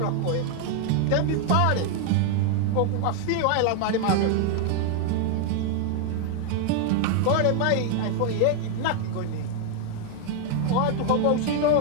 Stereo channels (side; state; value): both; different; correlation 0.00